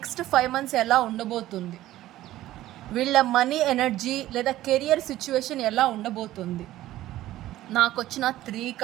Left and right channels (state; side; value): quieter; left; 14.8 dB